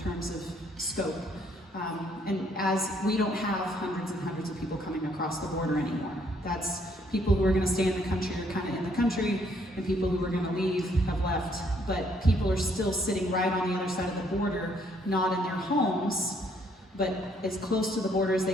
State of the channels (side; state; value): both; normal; correlation 0.67